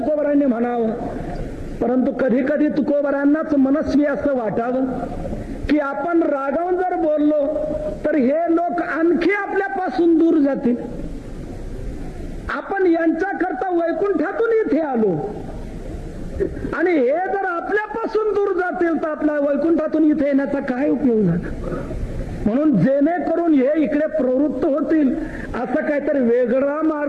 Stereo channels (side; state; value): both; identical; correlation 1.00